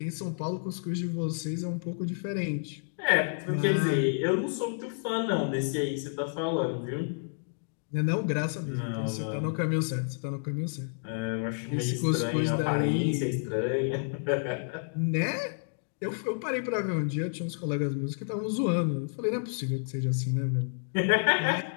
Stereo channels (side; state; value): right; silent; digital silence